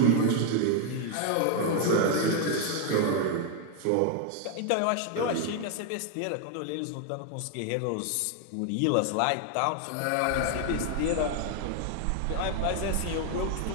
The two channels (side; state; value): both; different; correlation 0.00